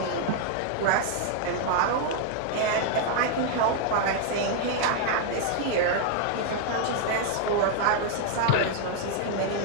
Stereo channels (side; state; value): both; different; correlation 0.00